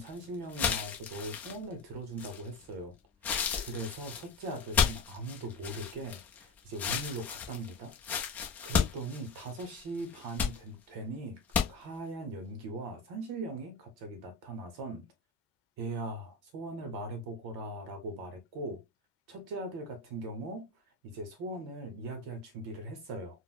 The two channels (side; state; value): right; quieter; 3.4 dB